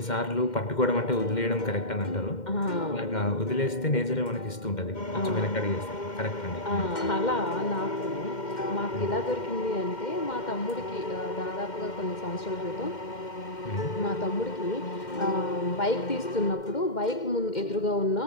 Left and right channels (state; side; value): late; right; 2.1 ms